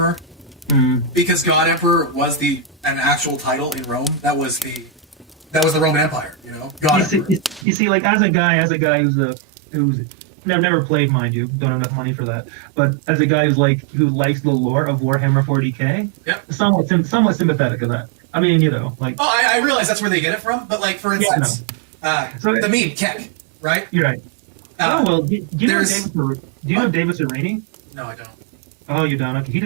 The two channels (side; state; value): left; drops out; at 7.7 s